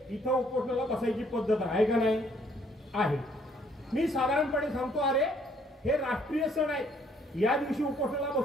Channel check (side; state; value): both; normal; correlation 0.65